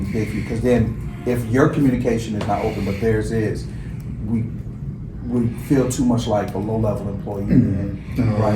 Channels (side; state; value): both; identical; correlation 1.00